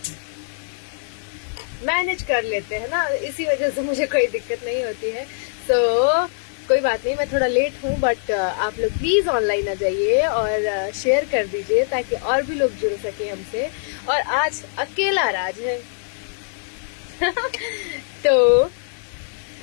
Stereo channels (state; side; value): silent; right; digital silence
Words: मैनेज कर लेते हैं ना, इसी वजह से मुझे कोई दिक्कत नहीं होती है। तो कोई बात नहीं, मैं थोड़ा लेट हूँ, बट आप लोग प्लीज ऑनलाइन आ जाइए और शेयर कर दीजिए ताकि और भी लोग जुड़ सके हमसे। और आज अकेला राज है तो